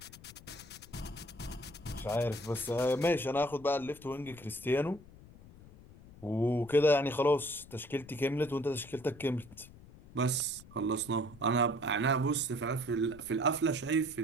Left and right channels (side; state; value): left; noise; rumble, 20 dB below the sound